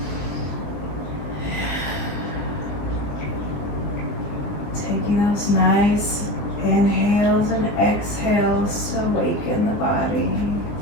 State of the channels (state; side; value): late; right; 20 ms